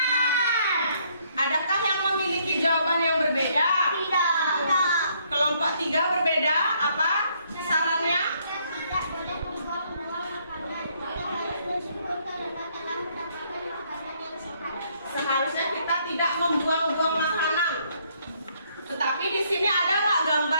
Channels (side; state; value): both; inverted; correlation -0.69